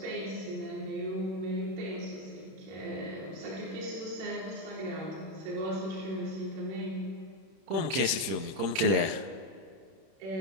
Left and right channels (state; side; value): late; left; 31 ms